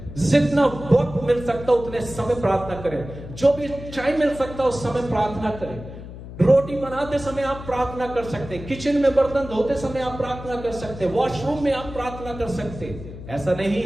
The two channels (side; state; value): left; noise; hum, 13 dB below the sound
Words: जितना वक्त मिल सकता उतने समय प्रार्थना करें। जो भी टाइम मिल सकता उस समय प्रार्थना करें। रोटी बनाते समय आप प्रार्थना कर सकते हैं, किचन में बर्तन धोते समय आप प्रार्थना कर सकते हैं, वॉशरूम में आप प्रार्थना कर सकते हैं। ऐसा नहीं